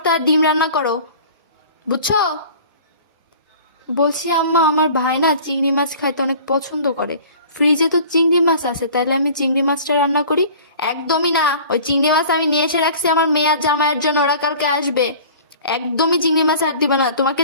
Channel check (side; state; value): both; inverted; correlation -0.45